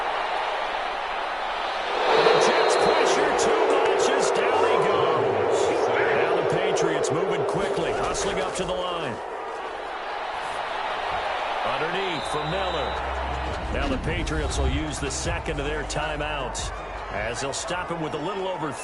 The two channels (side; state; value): both; identical; correlation 1.00